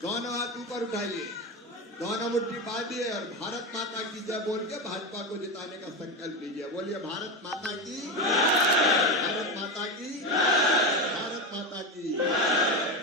दोनों हाथ ऊपर उठाइए, दोनों मुट्ठी बांधिए और भारत माता की जय बोल के भाजपा को जिताने का संकल्प लीजिए। बोलिए भारत माता की, भारत माता की, भारत माता की।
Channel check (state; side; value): normal; both; correlation 0.17